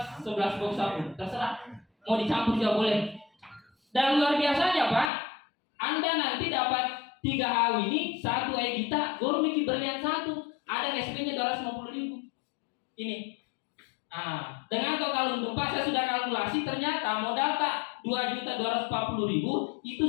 11 box sabun, terserah. Mau dicampur juga boleh. Dan luar biasanya Pak, Anda nanti dapat 3 hal ini, 1 Egita, Gold Mickey Berlian 1, ada SP-nya 250.000. Ini. Nah, dengan total untung Pak, saya sudah kalkulasi, ternyata modal tak 2.240.000 itu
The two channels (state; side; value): drops out; right; at 5.1 s